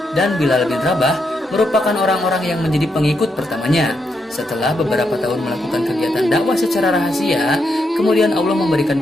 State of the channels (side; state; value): both; normal; correlation 0.81